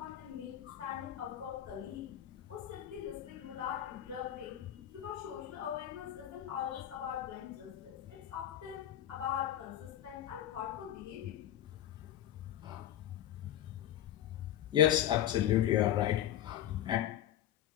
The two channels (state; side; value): quieter; right; 11.9 dB